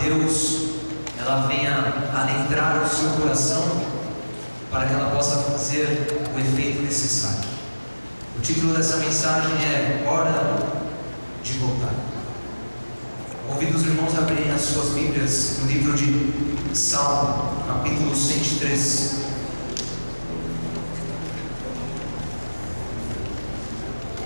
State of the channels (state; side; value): inverted; both; correlation -1.00